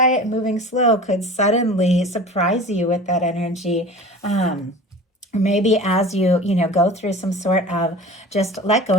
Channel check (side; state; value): both; normal; correlation 0.38